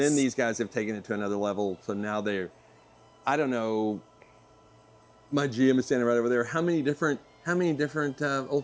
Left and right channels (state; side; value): identical; both; correlation 1.00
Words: these guys have taken it to another level. So now I don't know. My GM is standing right over there. How many different old